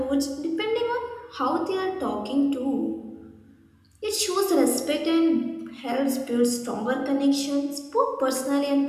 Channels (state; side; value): identical; both; correlation 1.00